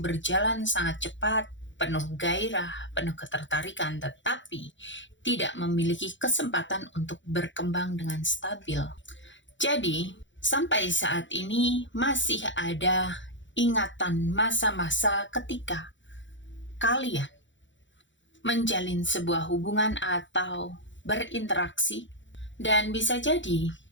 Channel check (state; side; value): late; right; 0.54 ms